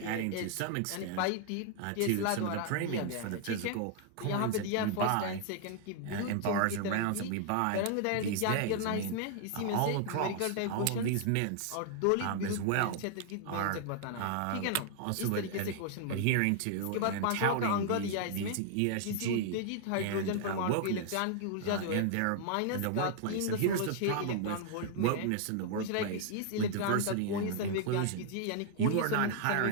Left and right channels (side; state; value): both; different; correlation 0.00